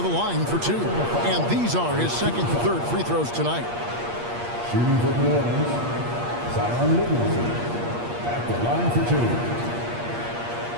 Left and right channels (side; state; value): left; late; 8.5 ms